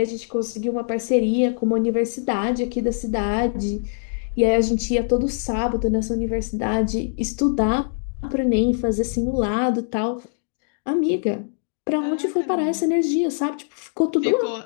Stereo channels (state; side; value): silent; right; digital silence